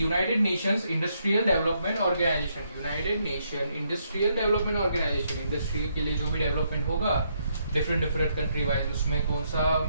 Nations industrial development organization. United Nation industrial development organization. Industry के लिए जो भी डेवलपमेंट होगा डिफरेंट कंट्री वाइज, उसमें कौन सा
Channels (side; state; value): both; inverted; correlation -0.75